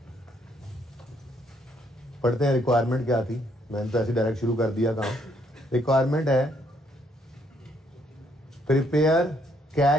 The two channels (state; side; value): normal; both; correlation 0.70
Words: पढ़ते हैं रिक्वायरमेंट क्या थी। मैंने तो ऐसे डायरेक्ट शुरू कर दिया काम। रिक्वायरमेंट है prepare